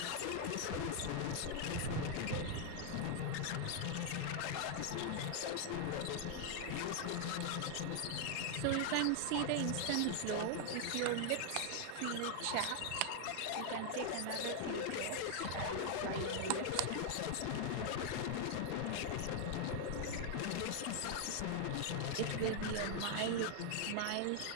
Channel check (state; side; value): different; both; correlation 0.00